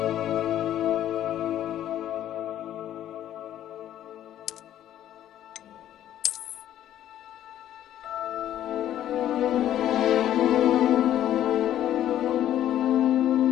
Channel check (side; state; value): right; quieter; 11.8 dB